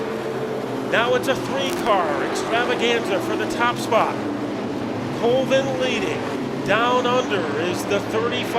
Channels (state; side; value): identical; both; correlation 1.00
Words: Now it's a 3-car extravaganza for the top spot. Colvin leading. Down under is the